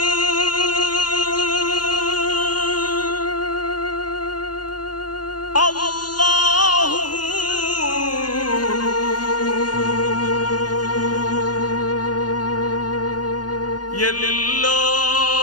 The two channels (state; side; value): late; right; 0.70 ms